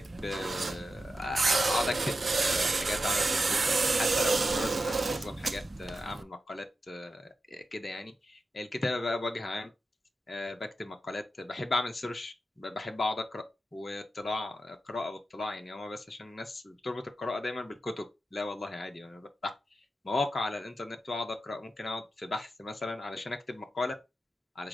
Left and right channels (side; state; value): both; normal; correlation 0.90